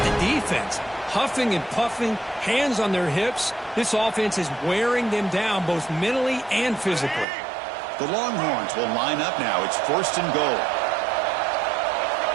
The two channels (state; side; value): drops out; left; at 7.2 s